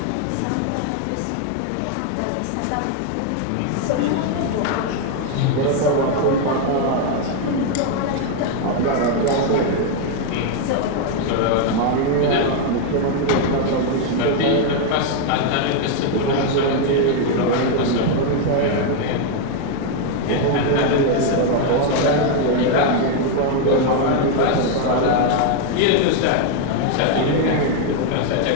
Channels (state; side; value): different; both; correlation 0.01